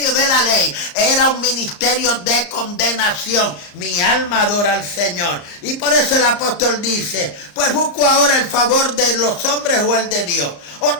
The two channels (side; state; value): right; late; 34 ms